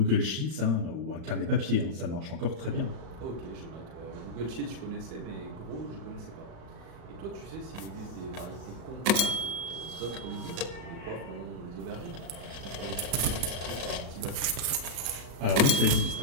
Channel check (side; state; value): left; late; 35 ms